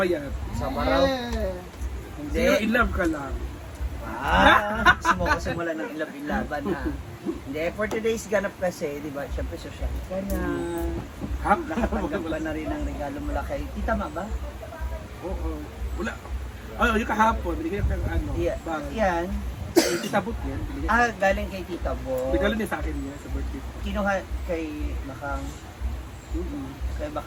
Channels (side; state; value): both; identical; correlation 1.00